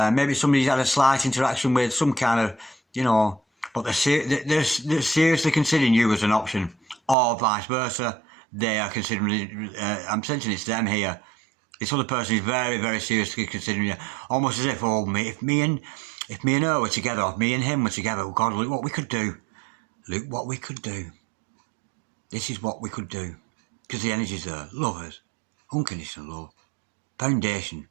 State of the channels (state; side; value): drops out; left; at 7.2 s